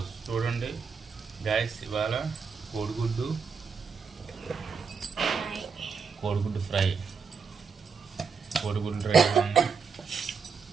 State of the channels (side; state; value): left; quieter; 5.6 dB